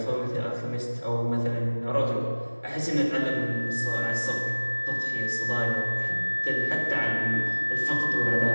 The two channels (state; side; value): inverted; both; correlation -1.00